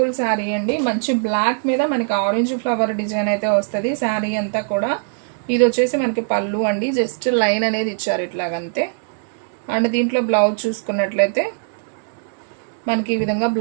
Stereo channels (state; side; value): silent; left; digital silence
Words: శారీ అండి, మంచి బ్లాక్ మీద మనకి ఆరెంజ్ ఫ్లవర్ డిజైన్ అయితే వస్తుంది శారీ అంతా కూడా. ఇది వచ్చేసి మనకి పళ్ళు అండి, జస్ట్ లైన్ అనేది ఇచ్చారు ఇట్లాగంతే. అండ్ దీంట్లో బ్లౌజ్ చూసుకున్నట్లయితే మనకి ఈ విధంగా